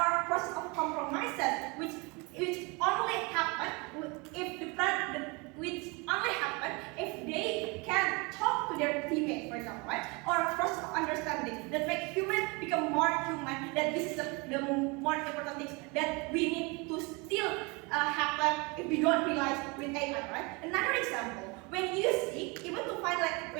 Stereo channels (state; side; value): quieter; left; 28.2 dB